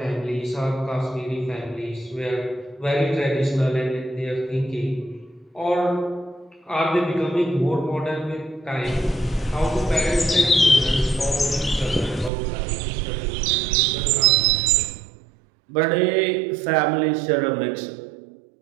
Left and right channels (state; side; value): drops out; left; at 12.3 s